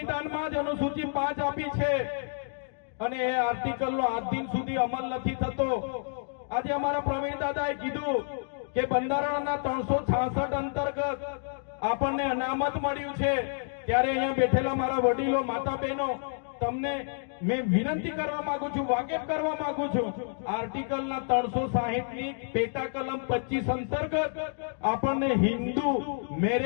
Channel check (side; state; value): right; silent; digital silence